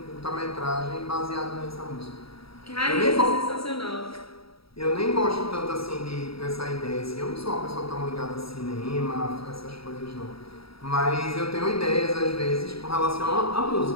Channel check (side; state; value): right; late; 0.76 ms